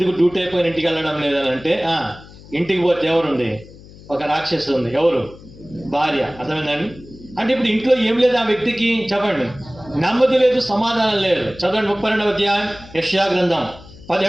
డ్యూటీ అయిపోయిన ఇంటికి వెళ్ళడం లేదని అంటే ఇంటికి పోతే ఎవరుంది? ఒక రాక్షసు ఉంది. ఎవరు? భార్య. అర్థమైందండి? అంటే ఇప్పుడు ఇంట్లో ఏం లేదు ఆ వ్యక్తికి, చెప్పండి. నెమ్మది లేదు, సమాధానం లేదు. చదవండి 32వ అధ్యాయం యెషయా గ్రంథం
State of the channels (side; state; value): left; noise; hum, 20 dB below the sound